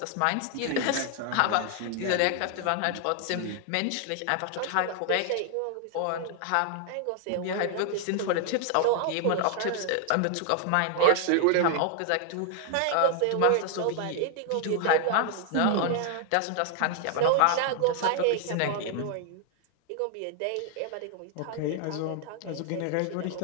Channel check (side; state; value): both; different; correlation 0.00